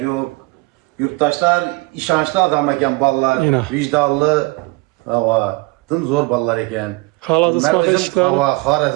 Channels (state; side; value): quieter; left; 25.1 dB